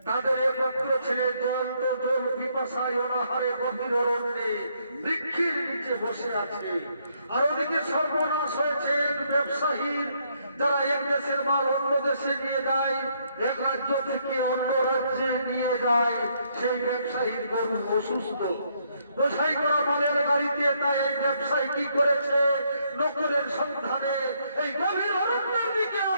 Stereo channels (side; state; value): both; inverted; correlation -0.72